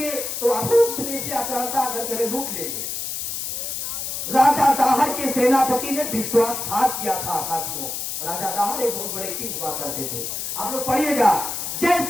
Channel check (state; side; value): noise; left; hiss, 4 dB below the sound